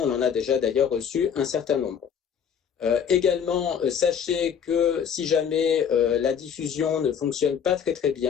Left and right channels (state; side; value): quieter; right; 7.7 dB